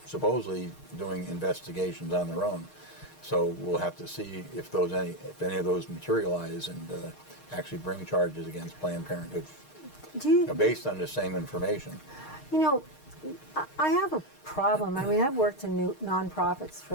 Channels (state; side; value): late; right; 6.5 ms